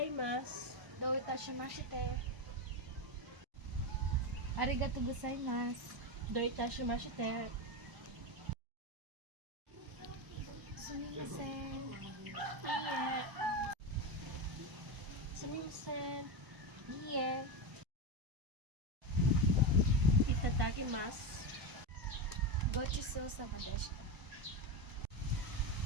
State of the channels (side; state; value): left; late; 1.0 ms